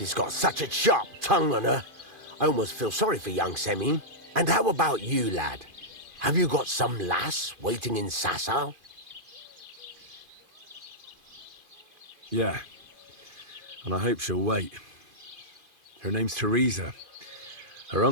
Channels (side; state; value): left; late; 2.5 ms